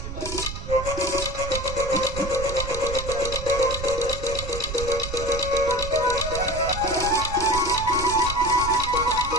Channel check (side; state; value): right; noise; rumble, 7 dB below the sound